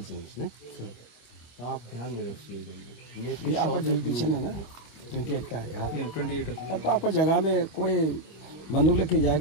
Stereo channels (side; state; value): right; late; 25 ms